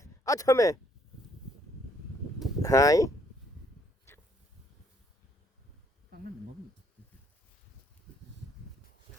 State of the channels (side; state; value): both; normal; correlation 0.67